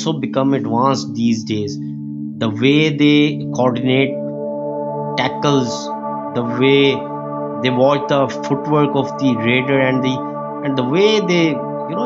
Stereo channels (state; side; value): identical; both; correlation 1.00